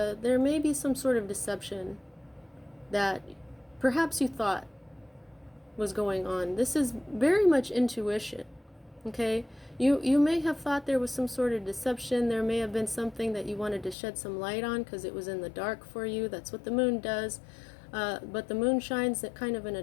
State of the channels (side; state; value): right; drops out; at 14.0 s